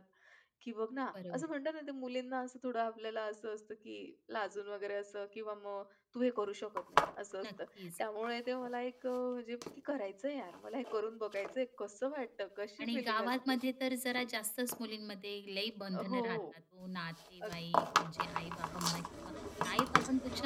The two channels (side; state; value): both; identical; correlation 1.00